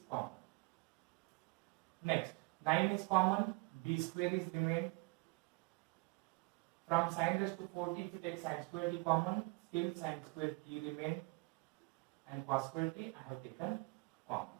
common. Next, 9 is common, b square is remained. From sin raised to 4t, if you take sin square t common, still sin square t remain, and cos square t I have taken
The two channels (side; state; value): left; quieter; 28.3 dB